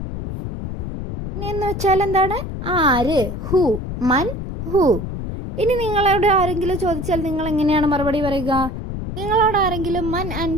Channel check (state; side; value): noise; left; rumble, 6 dB below the sound